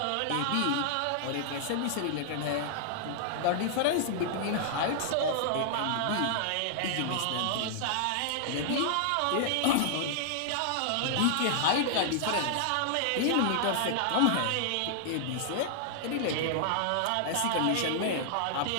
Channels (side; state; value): both; different; correlation -0.01